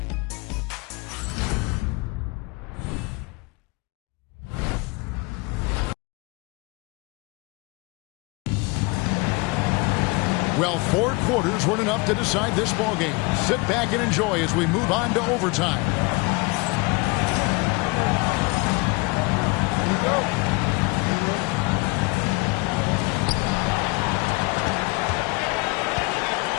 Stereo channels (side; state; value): right; quieter; 26.7 dB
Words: Well, 4 quarters weren't enough to decide this ballgame. Sit back and enjoy as we move on to overtime. Here we go.